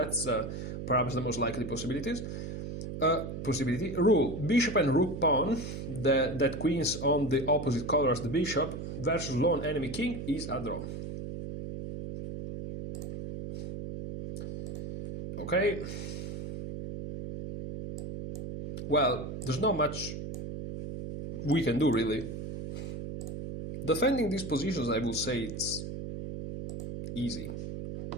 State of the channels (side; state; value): right; noise; hum, 7 dB below the sound